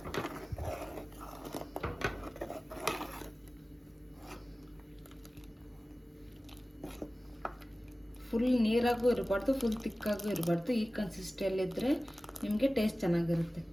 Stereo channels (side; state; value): both; normal; correlation 0.97